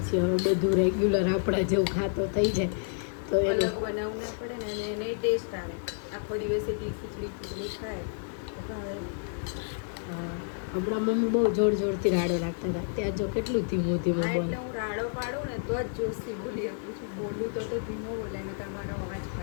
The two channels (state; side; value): silent; right; digital silence